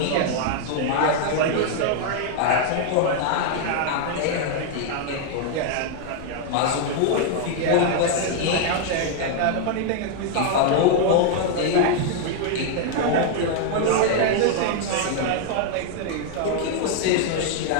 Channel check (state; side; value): different; both; correlation 0.00